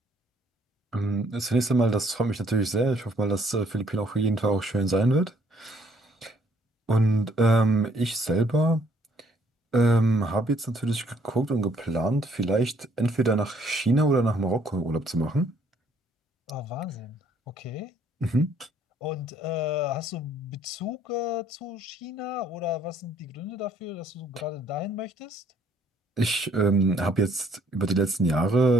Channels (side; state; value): both; normal; correlation 0.64